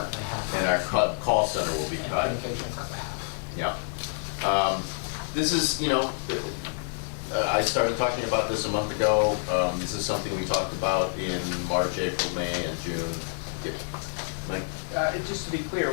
by half. And our call center will be cut. Communication is cut by half. Yeah. This is, you know, I started talking about this a month ago. This is something we talked about in March, April, May, and June. Mike? Just to be clear,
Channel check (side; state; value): right; silent; digital silence